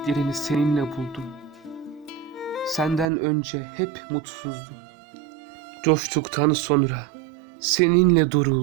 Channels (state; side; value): drops out; left; at 3.1 s